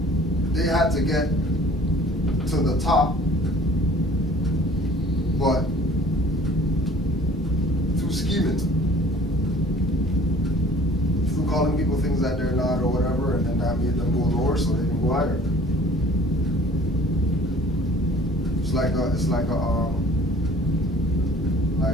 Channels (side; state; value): both; normal; correlation 0.51